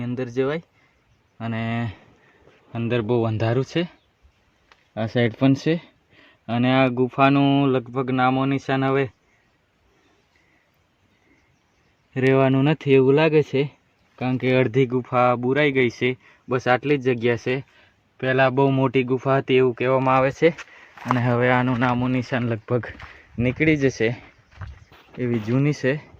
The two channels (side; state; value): both; identical; correlation 1.00